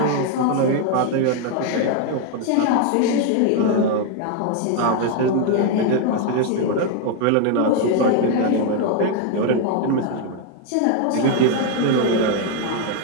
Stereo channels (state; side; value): different; both; correlation 0.01